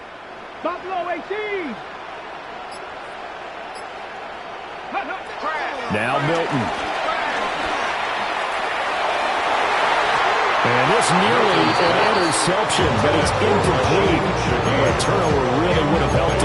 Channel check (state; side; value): identical; both; correlation 1.00